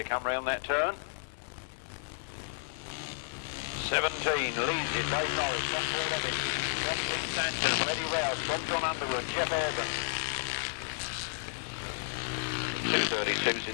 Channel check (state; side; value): silent; right; digital silence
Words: come round that turn. 17 leads it, Dave Norris from Paul Levitt, from Glyn Stanton, from Eddie Rouse, from Jon Underwood, Jeff Urban. 2:32's